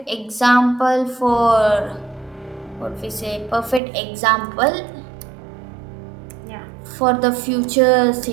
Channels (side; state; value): left; drops out; at 3.8 s